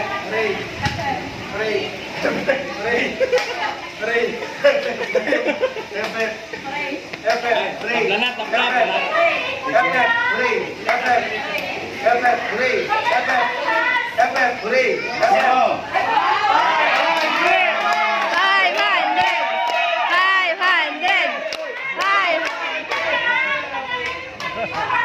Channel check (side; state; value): both; identical; correlation 1.00